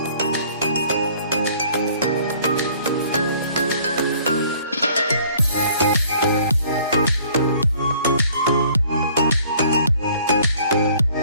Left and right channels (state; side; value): inverted; both; correlation -0.56